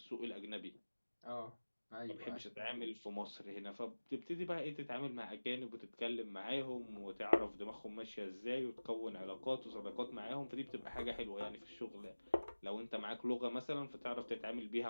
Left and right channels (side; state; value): both; inverted; correlation -1.00